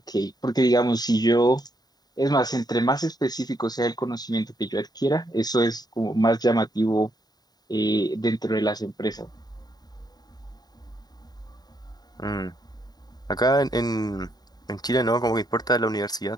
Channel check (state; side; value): late; right; 0.19 ms